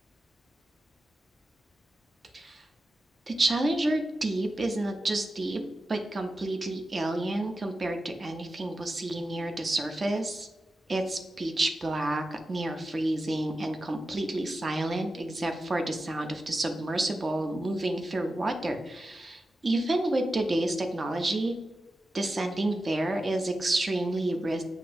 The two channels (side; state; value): both; normal; correlation 0.92